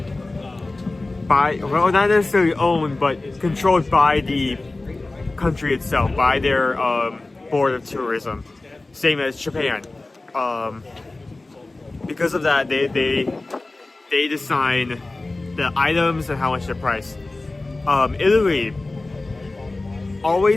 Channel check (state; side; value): quieter; right; 3.1 dB